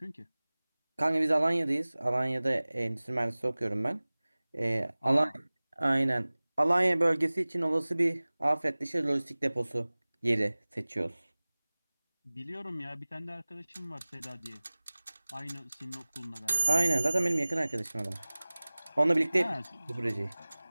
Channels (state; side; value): inverted; both; correlation -1.00